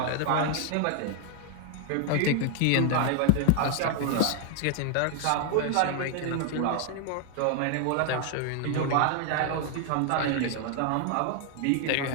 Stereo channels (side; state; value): both; different; correlation 0.00